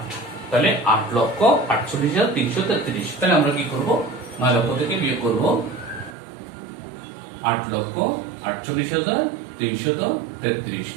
তাহলে 8,48,333। তাহলে আমরা কি করব, 9 লক্ষ থেকে বিয়োগ করব 8,48,333।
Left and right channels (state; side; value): drops out; left; at 6.2 s